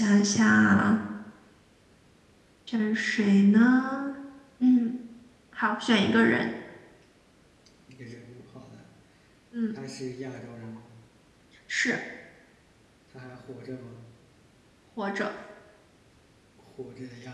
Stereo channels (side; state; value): both; identical; correlation 1.00